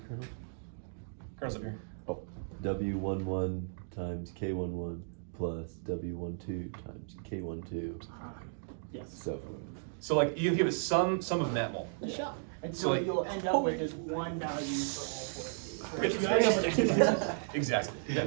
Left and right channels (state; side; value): silent; left; digital silence